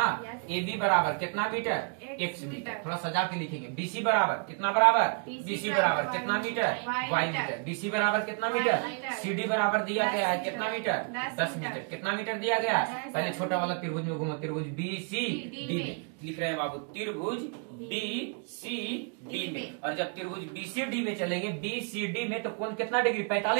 AB बराबर कितना मीटर? x metre. थोड़ा सजा के लिखेंगे। BC बराबर कितना? बराबर BC बराबर कितना मीटर? y metre. BC बराबर कितना मीटर? CD बराबर दिया गया है कितना मीटर? 10 मीटर। कितना मीटर दिया गया है? पहले छोटा वाला त्रिभुज में घूमो। त्रिभुज BCD में लिख रहे हैं बाबू, त्रिभुज BCD में। और जब त्रिभुज BCD में चलेंगे, BCD में तो कोण कितना डिग्री?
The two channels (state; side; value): quieter; left; 38.0 dB